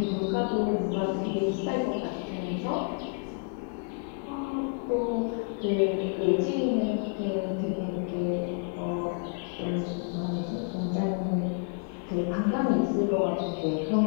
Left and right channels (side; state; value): right; quieter; 39.3 dB